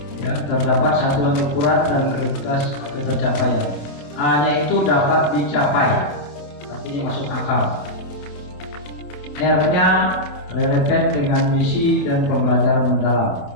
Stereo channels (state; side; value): late; right; 28 ms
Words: ya, terdapat satuan ukuran dan kriteria ketercapaian. A-nya itu dapat dicapai, artinya masuk akal. R-nya relevan dengan misi dan pembelajaran